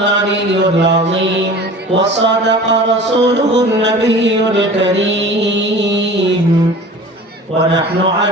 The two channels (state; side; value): normal; both; correlation 0.40